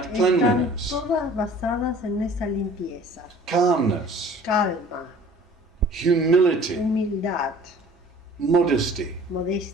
están cleanliness, todas basadas en esa limpieza, calmness, calma, humility, humildad, modesty,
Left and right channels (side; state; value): both; normal; correlation 0.49